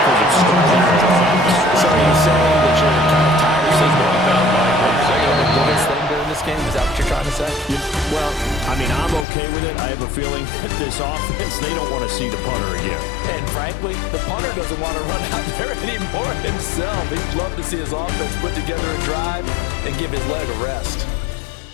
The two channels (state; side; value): drops out; right; at 9.2 s